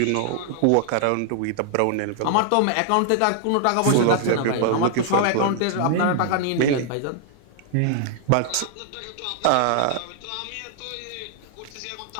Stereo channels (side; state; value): both; different; correlation 0.00